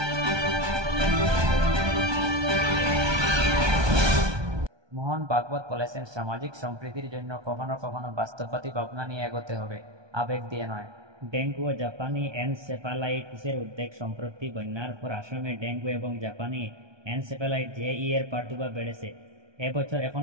মোহন ভাগবত বলেছেন, সামাজিক সম্প্রীতির জন্য কখনো কখনো বাস্তববাদী ভাবনা নিয়ে এগোতে হবে, আবেগ দিয়ে নয়। ডেঙ্গু ও জাপানি এনসেফালাইটিসের উদ্বেগ। সম্প্রতি বন্যার পর আসামে ডেঙ্গু এবং জাপানি এনসেফালাইট জেই এর প্রাদুর্ভাব বেড়েছে। এবছর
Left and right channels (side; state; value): left; late; 1.2 ms